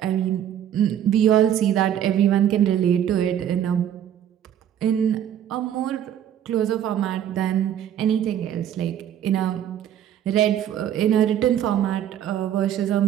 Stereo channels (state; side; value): quieter; left; 10.2 dB